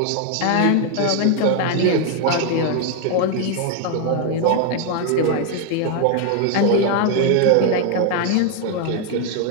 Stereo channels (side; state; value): both; different; correlation 0.00